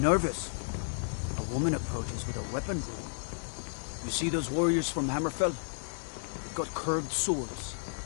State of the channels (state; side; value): silent; right; digital silence